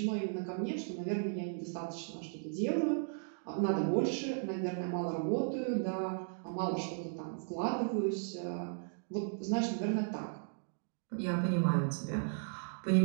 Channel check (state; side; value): silent; left; digital silence